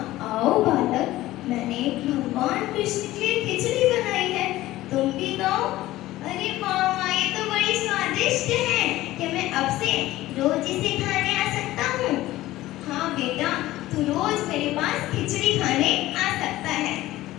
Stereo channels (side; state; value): right; quieter; 16.3 dB